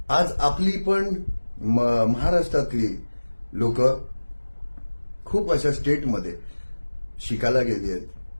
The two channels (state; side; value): inverted; both; correlation -1.00